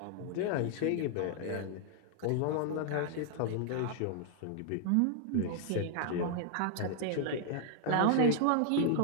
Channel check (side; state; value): both; different; correlation 0.00